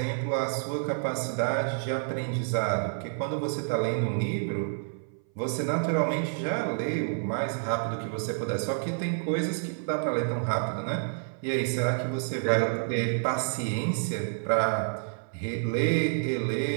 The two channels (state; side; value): silent; left; 59 dB below the other